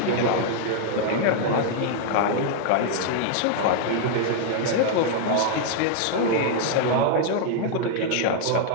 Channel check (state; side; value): different; both; correlation -0.01